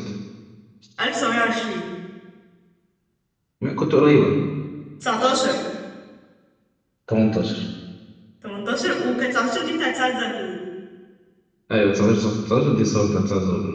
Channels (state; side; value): identical; both; correlation 1.00